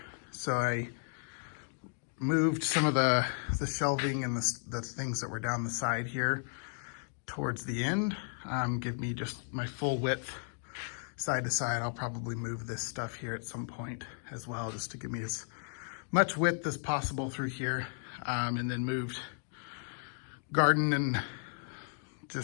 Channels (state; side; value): silent; right; 55 dB below the other